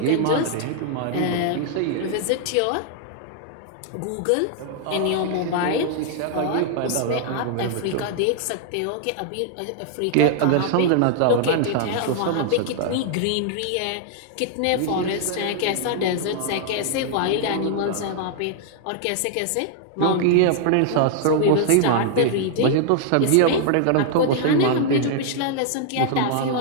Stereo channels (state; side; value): different; both; correlation -0.01